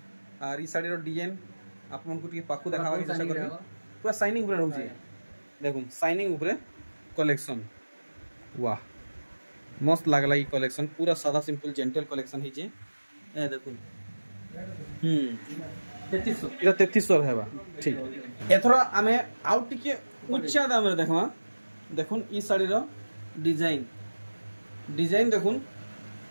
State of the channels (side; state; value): both; inverted; correlation -1.00